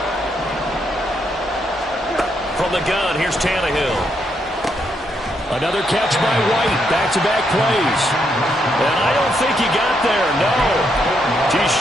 From the gun, here's Tannehill. Another catch by White. Back-to-back plays. And I don't think he got there, no. He's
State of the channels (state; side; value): normal; both; correlation 0.77